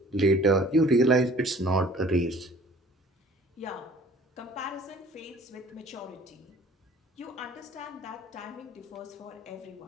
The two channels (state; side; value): normal; both; correlation 0.51